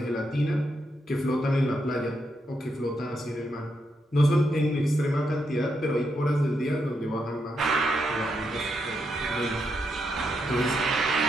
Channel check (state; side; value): normal; both; correlation 0.81